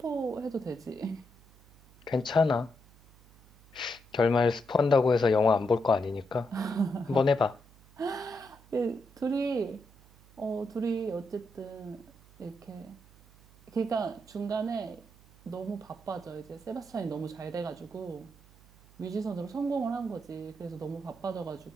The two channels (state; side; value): noise; right; hum, 25 dB below the sound